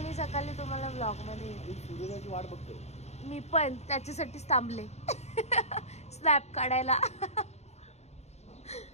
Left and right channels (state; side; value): late; right; 0.32 ms